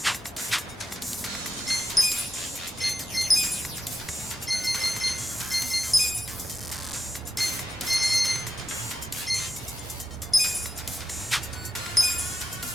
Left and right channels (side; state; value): both; normal; correlation 0.89